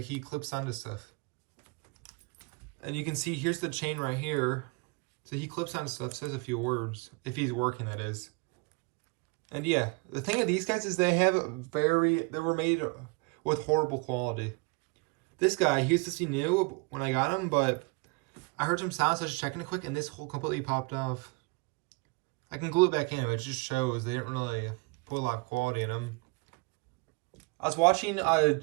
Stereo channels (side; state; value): left; quieter; 29.9 dB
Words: he clips onto stuff. And you can see, here's the chain right here. So he clips onto stuff, says a few words. If he's working, that is. And yeah, the thing of these guys is they were made with horrible quality. This guy, he was supposed to be new when I got him, but I heard some sounds, so I was checking it quick, and this hole completely popped off. I can glue it back in, but it just shows they didn't really put a lot of quality in them. I was watching